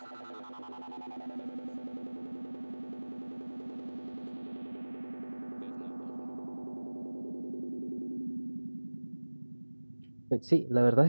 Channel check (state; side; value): inverted; both; correlation -1.00